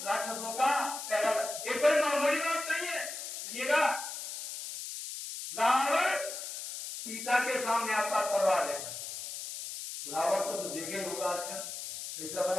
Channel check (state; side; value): noise; left; hiss, 7 dB below the sound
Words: राक्षसों का पहला एक कोई मामूली बात नहीं है सुनिएगा रावण सीता के सामने आता तलवार लेकर रावण को तो देखे होगा आजकल कैसा